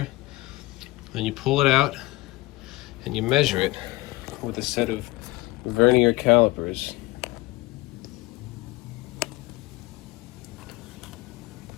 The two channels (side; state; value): right; quieter; 19.6 dB